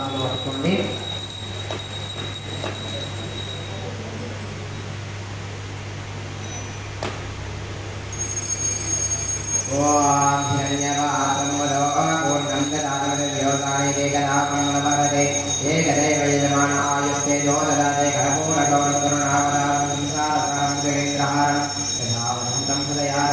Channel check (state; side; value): identical; both; correlation 1.00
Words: పట్టుకోండి. ఓం ధన్యవాదం వదో పూర్ణం దదామి దేవతాయ ఏకదాపంగళవరదే ఏకదైవ యజమాన ఆయుస్తే దోదదాతే కర్పూర గౌరకరుణావతారం సంసారసారం జగేంద్రహారం యథావదంతం